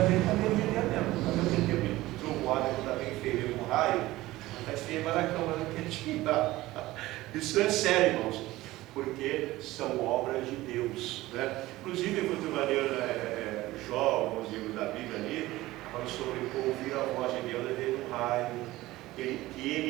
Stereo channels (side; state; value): left; quieter; 17.6 dB